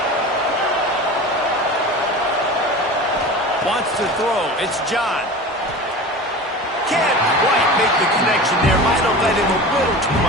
Wants to throw. It's John. Can't quite make the connection there. Might have let him a little too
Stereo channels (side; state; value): both; normal; correlation 0.34